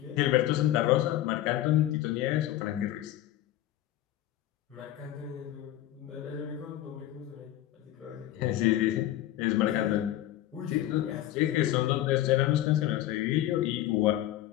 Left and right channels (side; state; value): right; quieter; 13.8 dB